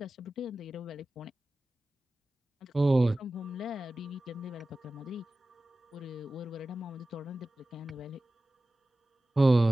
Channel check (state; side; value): normal; both; correlation 0.95